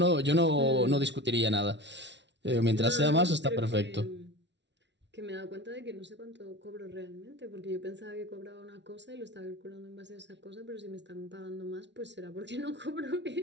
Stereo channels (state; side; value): late; left; 0.51 ms